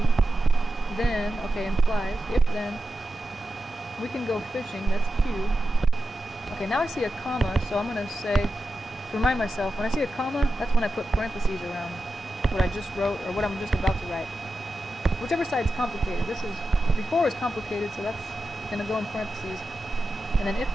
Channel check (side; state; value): both; normal; correlation 0.91